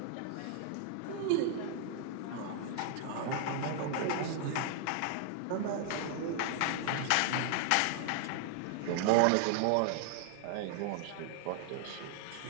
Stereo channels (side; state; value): both; different; correlation 0.00